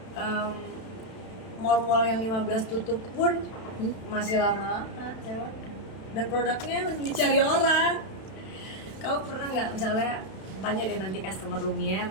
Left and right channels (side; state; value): right; late; 32 ms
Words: Mall-mall yang 15 tutup pun masih lama-lama sewanya. Dan produknya dicari orang. Kamu pernah nggak misalnya tanya deh nanti customer Lumiere,